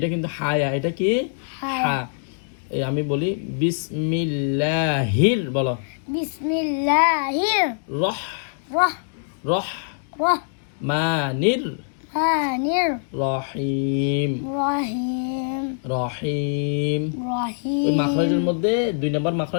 কিন্তু হায়া এটা কি হা আমি বলি বিসমিল্লাহির বলো বিসমিল্লাহির রহ রহ রহ রহ মানির মানির রহিম রহিম রহিম ওই রহিম মাখরাজের মধ্যে 2 নম্বর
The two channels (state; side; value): silent; right; digital silence